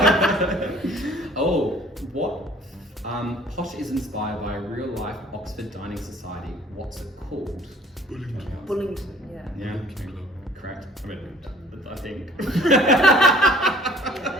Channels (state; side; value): normal; both; correlation 0.53